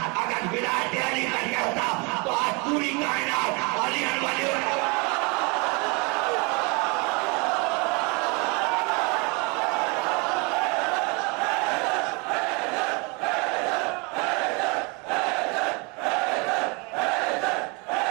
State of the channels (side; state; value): left; quieter; 30.3 dB